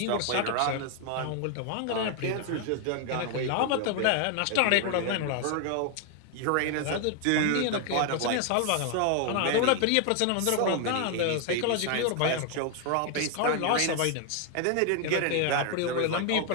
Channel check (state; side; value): different; both; correlation 0.01